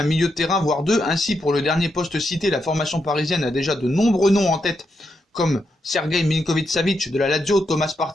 milieu de terrain, voire 2. Ainsi, pour le dernier poste cité, la formation parisienne a déjà de nombreux noms en tête, comme Sergei Milinkovic-Savic de la Lazio, Thomas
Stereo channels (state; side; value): normal; both; correlation 0.82